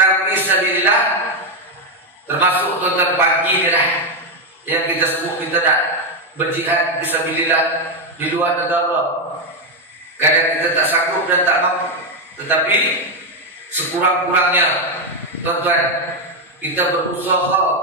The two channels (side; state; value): both; normal; correlation 0.06